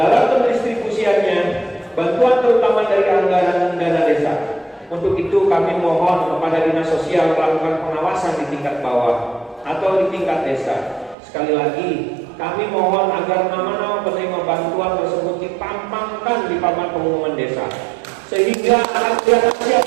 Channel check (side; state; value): left; drops out; at 11.2 s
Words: pendistribusiannya, bantuan terutama dari anggaran dana desa. Untuk itu kami mohon kepada Dinas Sosial melakukan pengawasan di tingkat bawah atau di tingkat desa. Sekali lagi, kami mohon agar nama-nama penerima bantuan tersebut dipampangkan di papan pengumuman desa, sehingga akan kelihatan